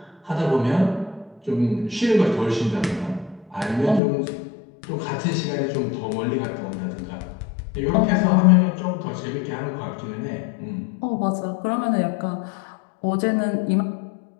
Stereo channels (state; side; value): drops out; right; at 4.0 s